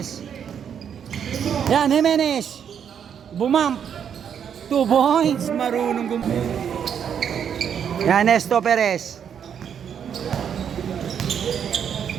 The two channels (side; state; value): left; quieter; 8.1 dB